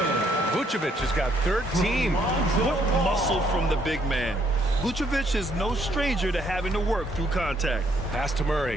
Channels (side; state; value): both; normal; correlation 0.69